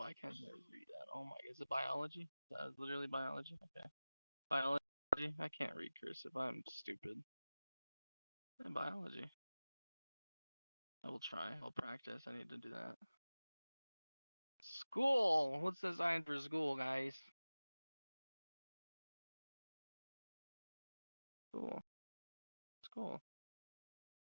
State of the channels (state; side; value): inverted; both; correlation -0.98